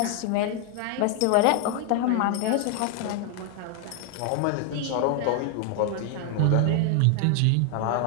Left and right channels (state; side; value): different; both; correlation 0.01